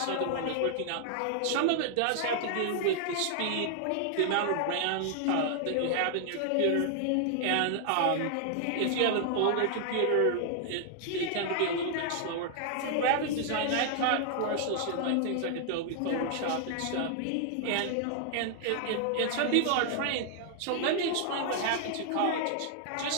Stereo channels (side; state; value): both; different; correlation 0.00